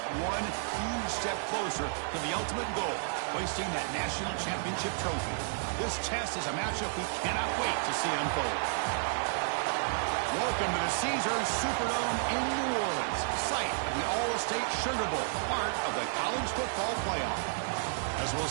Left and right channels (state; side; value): silent; left; digital silence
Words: one huge step closer to the ultimate goal, hoisting that national championship trophy. This test is a matchup we cannot wait to see unfold. Welcome to the Caesars Superdome in New Orleans, site of the All-State Sugar Bowl, part of the college football playoff. As we'll